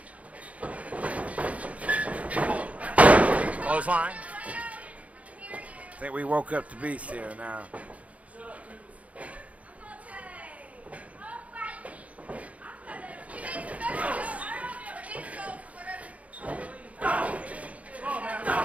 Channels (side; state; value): left; late; 0.067 ms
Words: Clothesline. I think we woke up the beast here now.